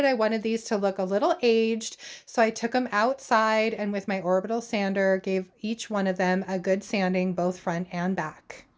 I wanted these to look a little aged, so I took them outside and with my orbital sander gave each one of them a good sanding both front and back.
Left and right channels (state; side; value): identical; both; correlation 1.00